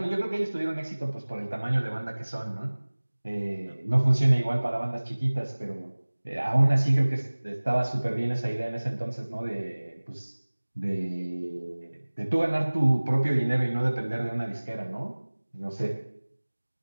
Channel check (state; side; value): inverted; both; correlation -1.00